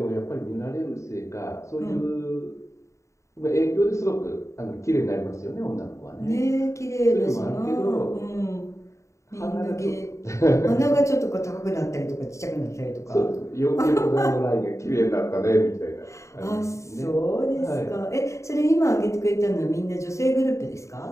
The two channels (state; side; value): late; right; 0.14 ms